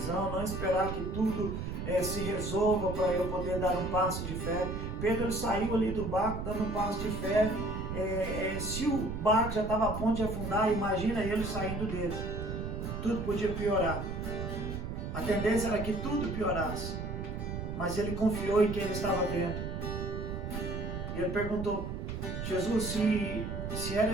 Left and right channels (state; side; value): noise; right; rumble, 5 dB below the sound